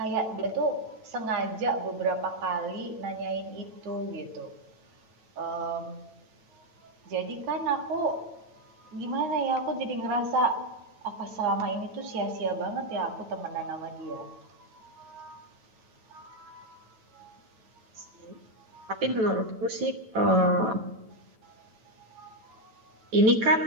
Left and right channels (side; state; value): left; late; 9.1 ms